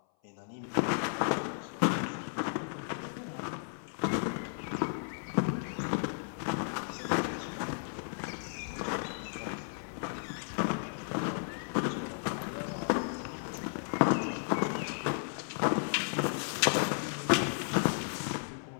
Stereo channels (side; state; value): right; silent; 55 dB below the other